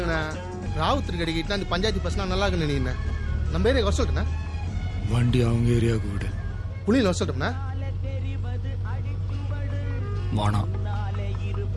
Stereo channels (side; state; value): both; identical; correlation 1.00